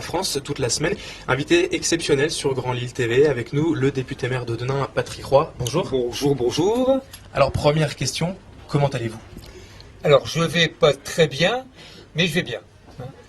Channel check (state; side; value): identical; both; correlation 1.00